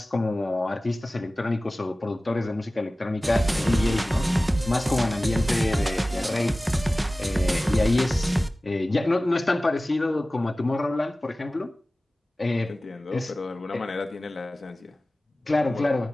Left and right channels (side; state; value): both; normal; correlation 0.97